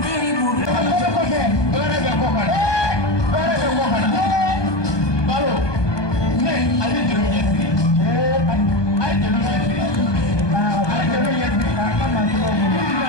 Kɔfɛ kɔfɛ. Baara bɛ kɔ kana. Baara bɛ kɔ kana. Balo. Ne a bɛ jeliw ɲɛsiri. A ye jeliw ɲɛsiri. A ye jeliw ɲɛsiri. K'a ka masɔrɔ bolo.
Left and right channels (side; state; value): right; late; 1.2 ms